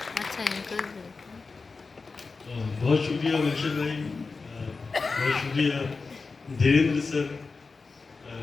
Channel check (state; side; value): quieter; right; 4.3 dB